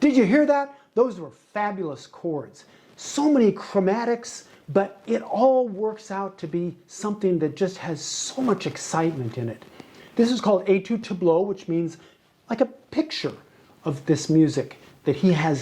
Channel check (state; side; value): identical; both; correlation 1.00